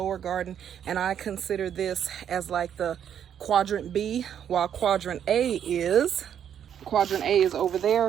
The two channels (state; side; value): quieter; left; 9.1 dB